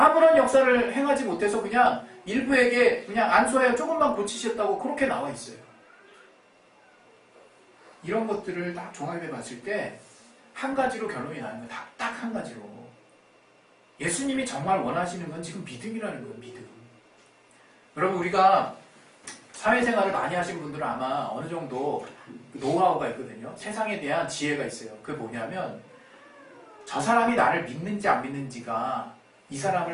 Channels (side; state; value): both; identical; correlation 1.00